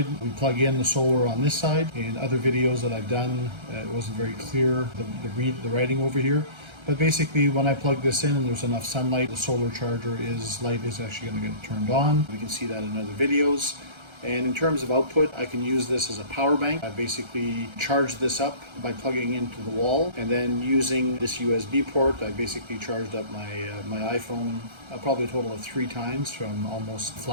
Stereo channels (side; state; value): left; late; 1.3 ms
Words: we plug in the solar on this side. In other videos that I've done, it wasn't very clear, the writing over here. But basically, when I plug this in and there's enough sunlight, the solar charger light is actually going to get turned on. We can see that in other videos. And in terms of output, I can use this as a power bank. I basically charge this up by plugging into the wall, and then using this USB port, I basically charged up my iPhone probably a total of 3 times from almost